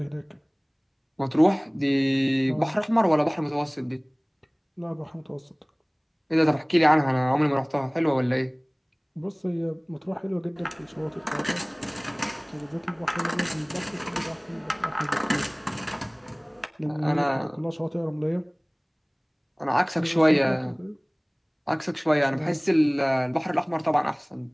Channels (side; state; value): both; identical; correlation 1.00